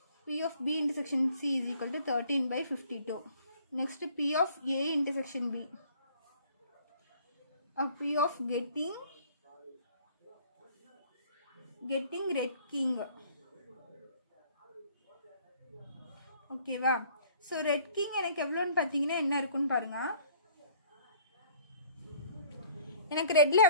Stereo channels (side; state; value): both; inverted; correlation -0.56